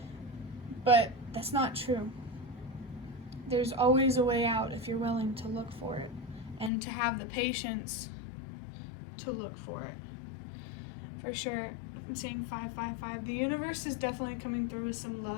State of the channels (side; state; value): right; drops out; at 6.7 s